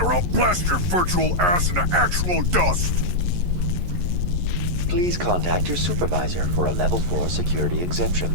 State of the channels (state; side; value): late; left; 11 ms